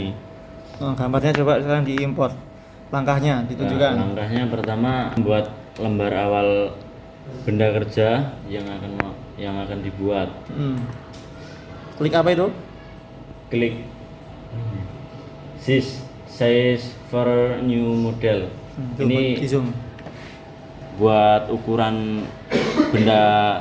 Gambarnya coba sekarang diimpor. Langkahnya ditunjukkan. Langkahnya pertama membuat lembar awal benda kerja yang akan dibuat. Klik apa itu? Klik size for new model. Ini di zoom. buat ukuran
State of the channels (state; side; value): identical; both; correlation 1.00